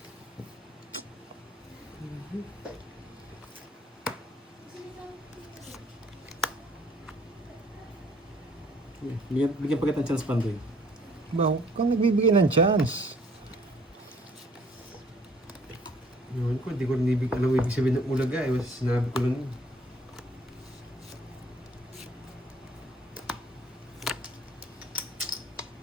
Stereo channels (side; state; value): both; normal; correlation 0.59